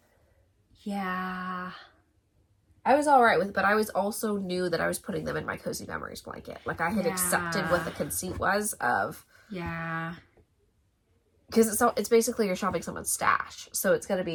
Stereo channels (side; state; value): both; identical; correlation 1.00